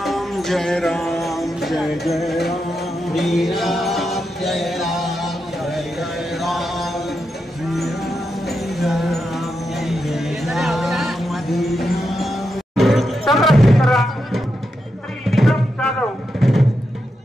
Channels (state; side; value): normal; both; correlation 0.86